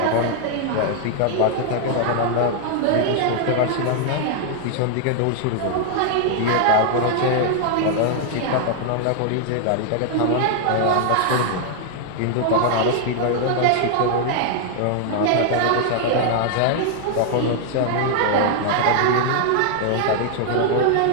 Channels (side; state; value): both; different; correlation -0.01